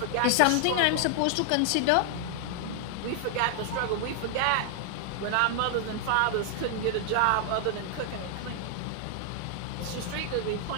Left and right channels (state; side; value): different; both; correlation 0.00